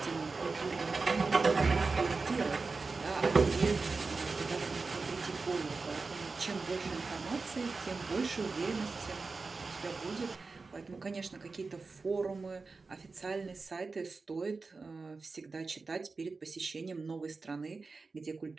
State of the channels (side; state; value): left; quieter; 4.1 dB